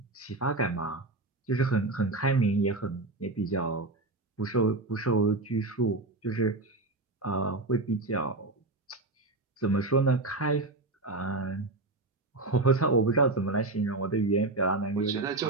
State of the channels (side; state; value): left; quieter; 3.1 dB